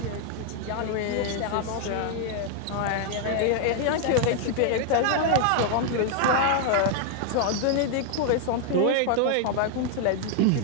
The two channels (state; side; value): different; both; correlation 0.00